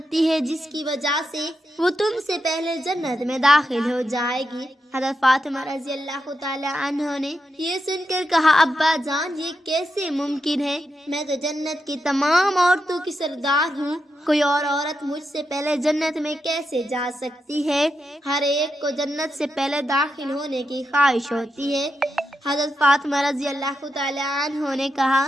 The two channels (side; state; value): both; normal; correlation 0.85